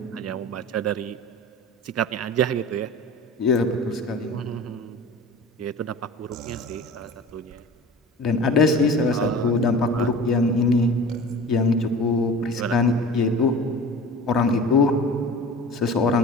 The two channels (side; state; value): both; normal; correlation 0.38